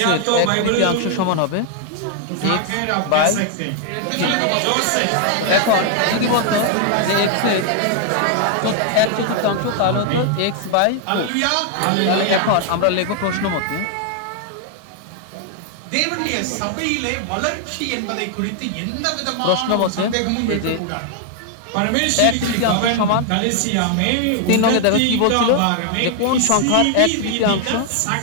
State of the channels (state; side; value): different; both; correlation 0.00